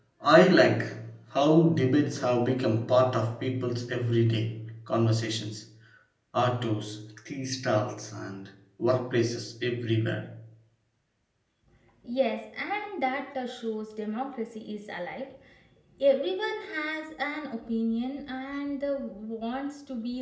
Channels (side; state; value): both; identical; correlation 1.00